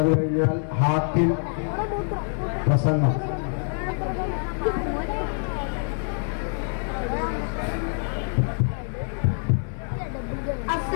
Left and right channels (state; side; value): silent; right; 61 dB below the other